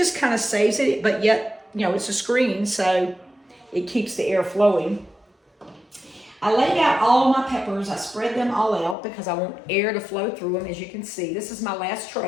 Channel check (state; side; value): drops out; right; at 9.0 s